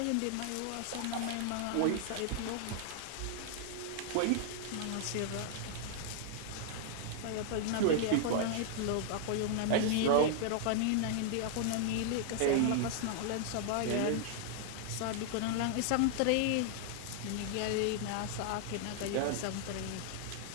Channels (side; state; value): both; different; correlation 0.00